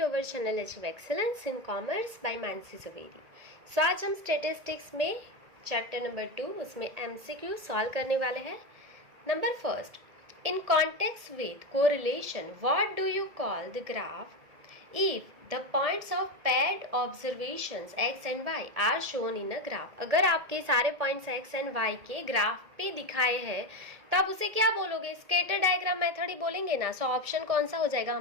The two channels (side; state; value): left; late; 1.8 ms